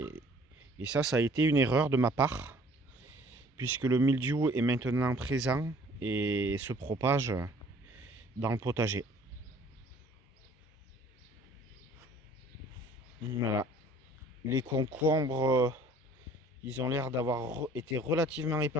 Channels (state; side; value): normal; both; correlation 0.54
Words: ça a été une erreur de ma part, puisque le mildiou est maintenant présent et se propage dans le potager. Voilà. Les concombres, ils ont l'air d'avoir été relativement